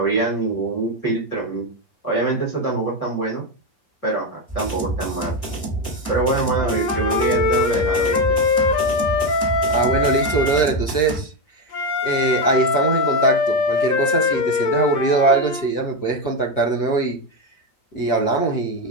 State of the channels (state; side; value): late; right; 6.3 ms